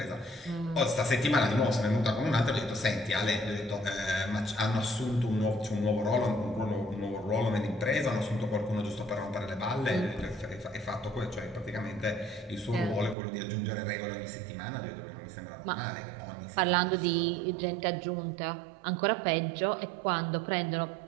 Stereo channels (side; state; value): left; drops out; at 13.2 s